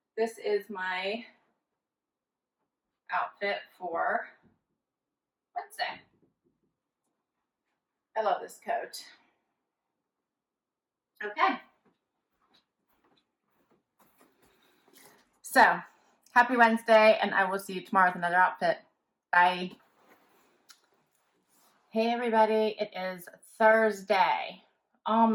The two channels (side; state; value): both; identical; correlation 1.00